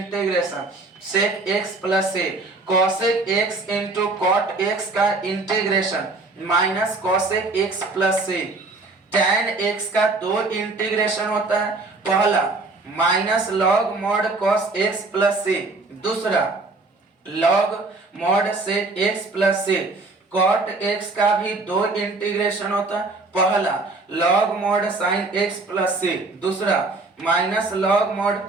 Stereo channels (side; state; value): left; quieter; 3.4 dB